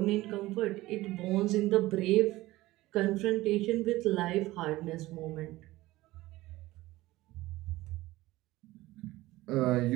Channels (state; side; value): quieter; left; 18.0 dB